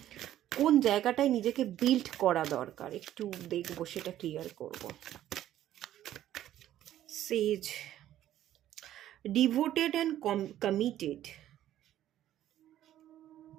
কোন জায়গাটায় নিজেকে বিল্ড করা দরকার, একটু দেখব, সেটা ক্লিয়ার করব। সেজ, ডিভোটেড অ্যান্ড কমিটেড।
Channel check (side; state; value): left; quieter; 12.5 dB